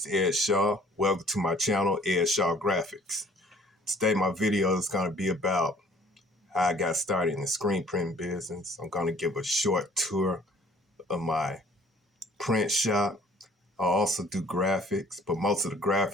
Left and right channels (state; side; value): normal; both; correlation 0.55